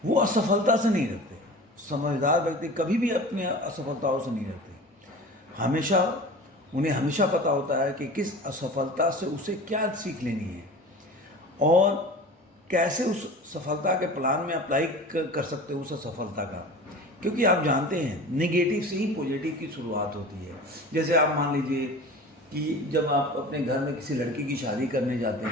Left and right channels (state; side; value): normal; both; correlation 0.37